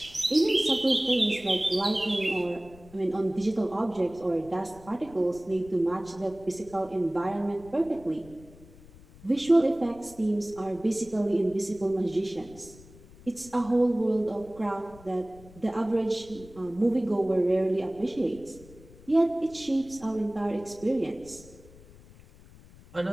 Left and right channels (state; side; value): noise; left; rumble, 22 dB below the sound